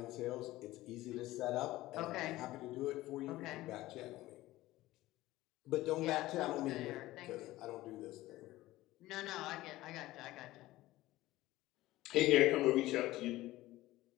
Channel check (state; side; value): quieter; right; 17.1 dB